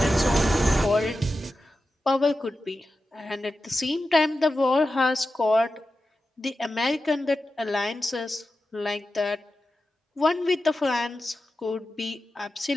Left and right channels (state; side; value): normal; both; correlation 0.92